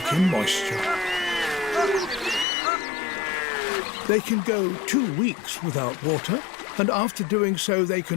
in moisture. They can go 2 weeks without water, and after doing so they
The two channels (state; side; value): drops out; right; at 2.5 s